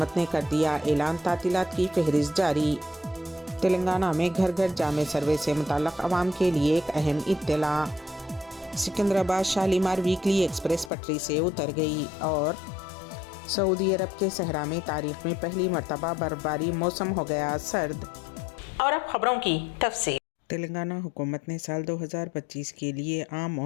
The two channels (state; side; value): drops out; right; at 10.9 s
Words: ने कर दिया ऐलान। तातीलात की फहरिस्त जारी। तेलंगाना में घर घर जामे सर्वे से मुताल्लिक़ अवाम के लिए एक अहम इत्तला। सिकंदराबाद शालीमार वीकली एक्सप्रेस पटरी से उतर गई और सऊदी अरब के सहरा में तारीख में पहली मरतबा बर्फबारी, मौसम हो गया सर्द। और अब खबरों की तफसील। तेलंगाना हुकूमत ने साल 2025 के लिए आम